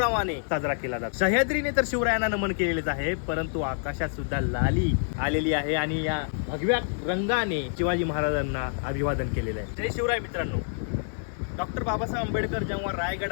साजरा केला जातो। सह्याद्रीने तर शिवरायांना नमन केलेलेच आहे, परंतु आकाशात सुद्धा लाली आलेली आहे आणि या भगव्या रंगाने शिवाजी महाराजांना अभिवादन केलेलं आहे। जय शिवराय मित्रांनो। डॉक्टर बाबासाहेब आंबेडकर जेव्हा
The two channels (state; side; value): silent; right; digital silence